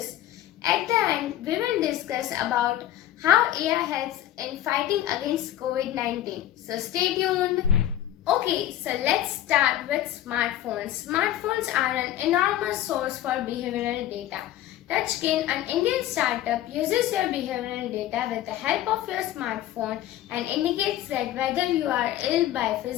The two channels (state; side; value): quieter; right; 12.9 dB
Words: at the end we will discuss about how AI helps in fighting against COVID-19. So stay tuned. Okay, so let's start with smartphones. Smartphones are an enormous source for behavioral data. Touchkin, an Indian startup, uses your behavioral data with the help of your smartphone and indicates that whether you are ill by